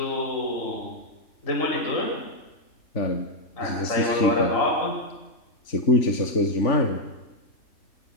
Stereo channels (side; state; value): right; late; 3.4 ms